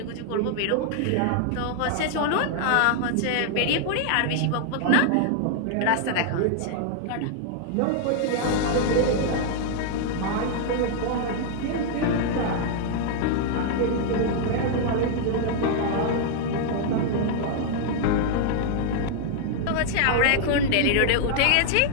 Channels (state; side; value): different; both; correlation 0.00